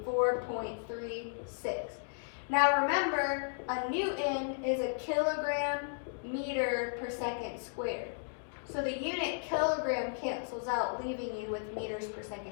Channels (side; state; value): right; silent; digital silence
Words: 4.36. Now remember, a newton is a kilogram meter per second squared. So the unit kilogram cancels out, leaving you with meters per